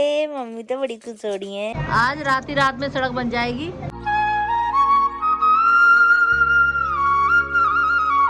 मम्मी तो बड़ी खुश हो रही है। आज रात ही रात में सड़क बन जाएगी।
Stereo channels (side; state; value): both; identical; correlation 1.00